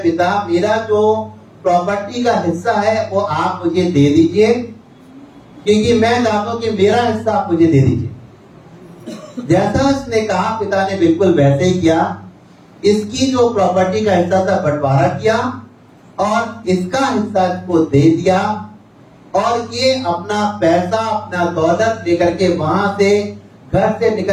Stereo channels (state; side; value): identical; both; correlation 1.00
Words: मेरा जो प्रॉपर्टी का हिस्सा है वो आप मुझे दे दीजिए, क्योंकि मैं चाहता हूं कि मेरा हिस्सा आप मुझे दे दीजिए। जैसा इसने कहा, पिता ने बिल्कुल वैसे ही किया। इसकी जो प्रॉपर्टी का हिस्सा था बंटवारा किया और इसका हिस्सा इसको दे दिया, और ये अपना पैसा, अपना दौलत लेकर के वहां से, घर से